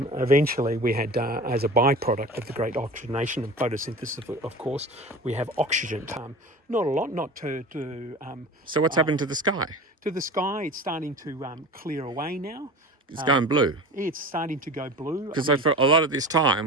we had, as a byproduct of the great oxygenation and photosynthesis, of course, we have oxygen. Not a lot, not to so what's happened to the sky? To the sky, it's starting to clear away now. It's going blue. It's starting to go blue. Because for a lot of this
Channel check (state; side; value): normal; both; correlation 0.35